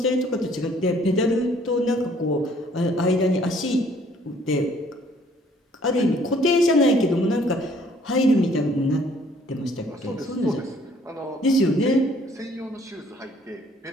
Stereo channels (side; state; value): both; normal; correlation 0.60